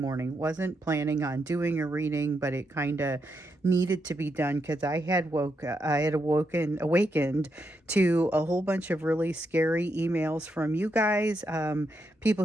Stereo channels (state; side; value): normal; both; correlation 0.82